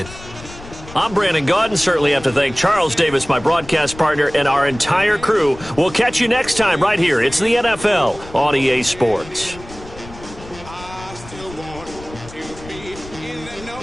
I'm Brandon Gaudin. Certainly have to thank Charles Davis, my broadcast partner, and our entire crew. We'll catch you next time right here. It's the NFL on EA Sports.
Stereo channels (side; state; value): left; noise; rumble, 17 dB below the sound